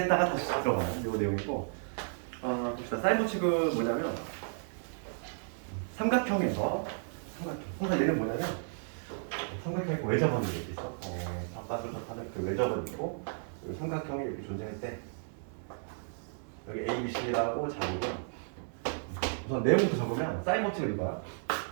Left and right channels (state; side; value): silent; left; digital silence